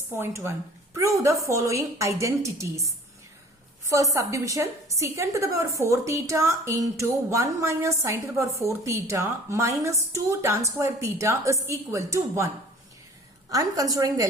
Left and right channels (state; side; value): normal; both; correlation 0.48